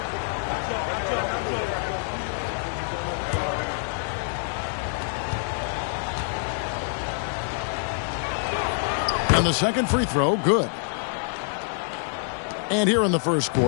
And the second free throw, good. And here in the first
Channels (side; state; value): right; silent; digital silence